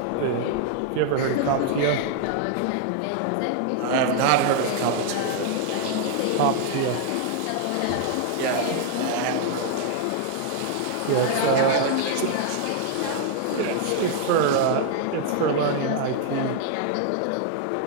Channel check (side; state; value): both; different; correlation 0.00